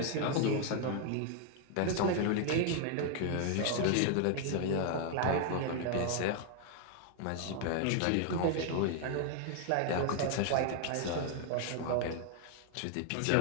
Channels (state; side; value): different; both; correlation 0.00